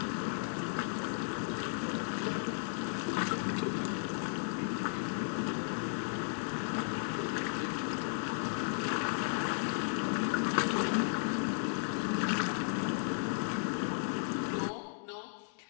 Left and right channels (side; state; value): right; silent; digital silence